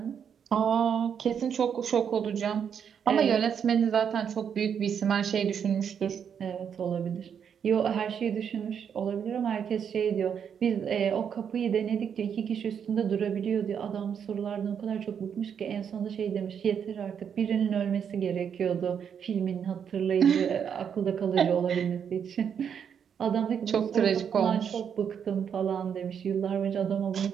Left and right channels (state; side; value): quieter; left; 7.7 dB